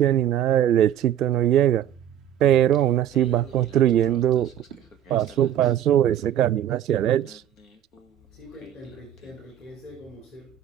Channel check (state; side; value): quieter; left; 11.0 dB